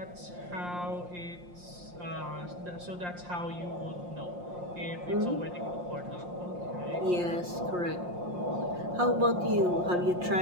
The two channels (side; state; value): left; late; 5.6 ms